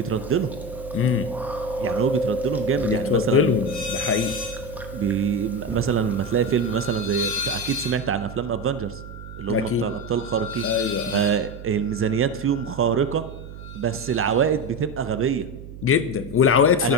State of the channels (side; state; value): right; noise; hum, 13 dB below the sound